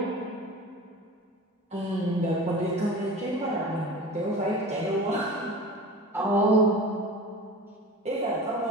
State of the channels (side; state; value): both; normal; correlation 0.36